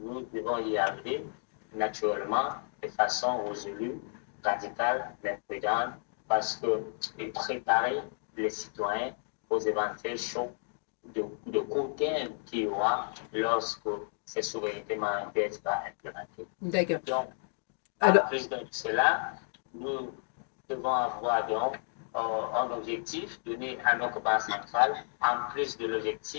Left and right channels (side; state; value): right; silent; digital silence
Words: devons y arriver naturellement de façon résolue, radicale, mais prudente, parce que préparer les citoyens aux éventuels chocs de court terme qu'il y aura lorsque ces souverainetés monétaires seront implémentées. D'accord. Donc, plus de cela, nous devons avoir donc un objectif donné à notre banque centrale, en plus de